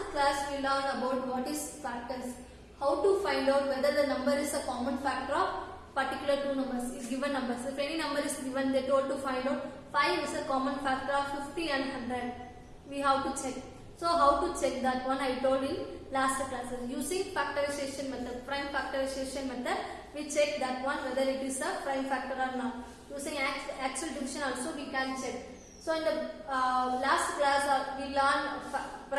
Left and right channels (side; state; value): both; identical; correlation 1.00